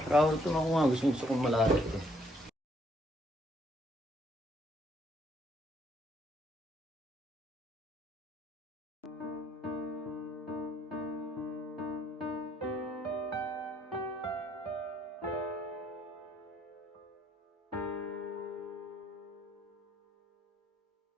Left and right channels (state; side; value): normal; both; correlation 0.67